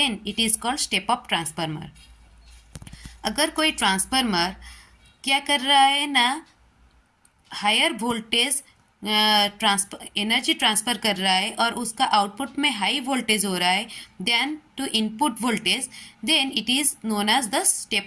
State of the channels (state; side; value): identical; both; correlation 1.00